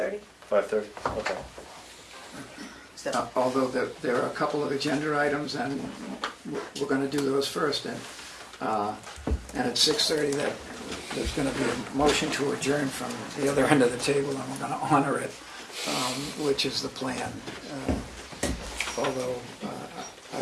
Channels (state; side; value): identical; both; correlation 1.00